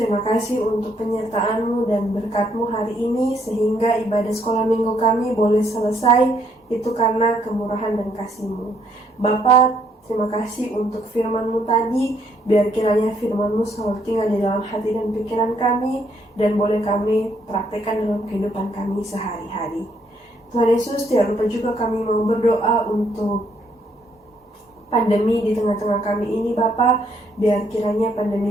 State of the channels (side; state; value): both; normal; correlation 0.70